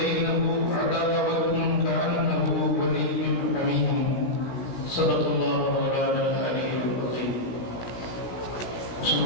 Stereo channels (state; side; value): late; right; 17 ms